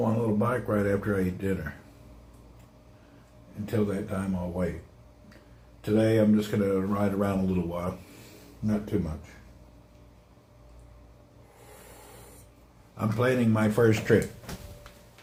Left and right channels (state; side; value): identical; both; correlation 1.00